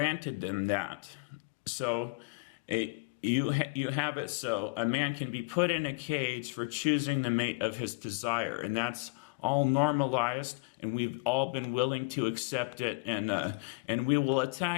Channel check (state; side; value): quieter; right; 28.6 dB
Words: them that. So you have it so a man can be put in a cage for choosing the mate of his desire, and that's all normalized, and we've all been willing to accept it, and we will